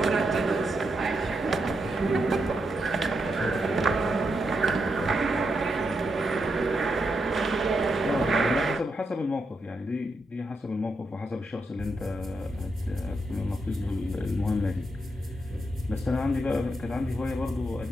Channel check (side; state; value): both; normal; correlation 0.83